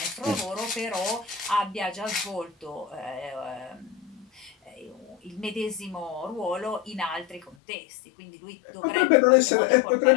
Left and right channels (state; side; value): drops out; right; at 7.6 s